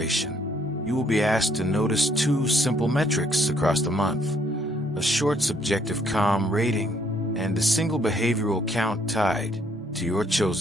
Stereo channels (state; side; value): normal; both; correlation 0.67